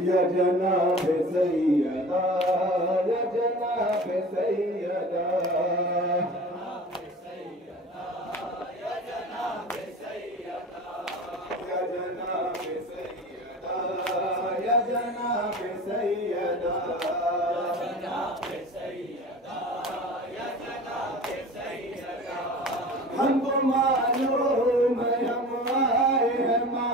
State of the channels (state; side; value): normal; both; correlation 0.38